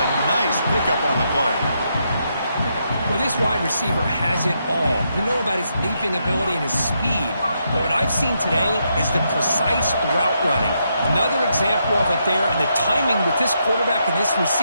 nice pickup on the play. Well, this wide receiver has it all. We know about his leaping ability and his speed. But what I've seen today is the precise route running. Another example of it there, and the timing with this quarterback and this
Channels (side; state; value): both; inverted; correlation -0.79